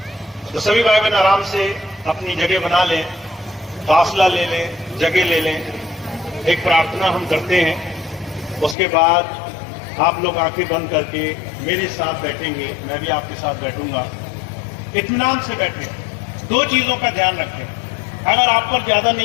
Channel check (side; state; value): right; drops out; at 8.8 s